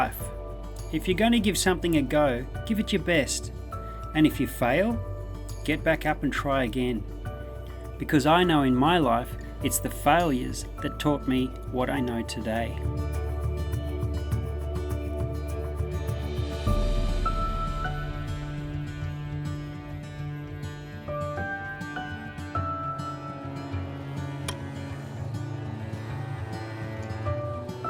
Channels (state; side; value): identical; both; correlation 1.00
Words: If you're going to give something a go, give it your best. And if you fail, get back up and try again. Because I know in my life, it's the failures that taught me what I know today.